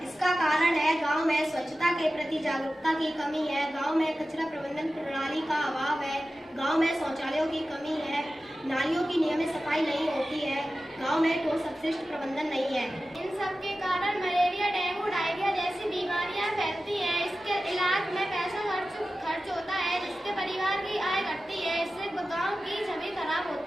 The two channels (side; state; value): both; normal; correlation 0.94